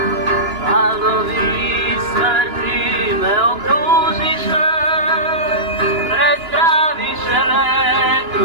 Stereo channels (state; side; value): late; left; 2.9 ms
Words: Valovi smrti me okružiše, prestraviše me